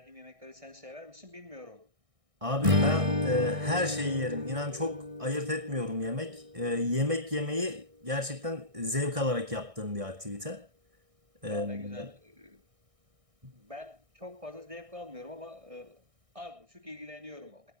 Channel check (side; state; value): left; late; 1.6 ms